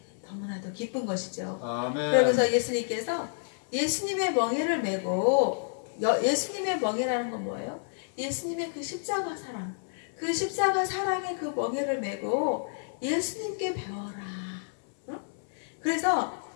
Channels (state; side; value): silent; right; 58 dB below the other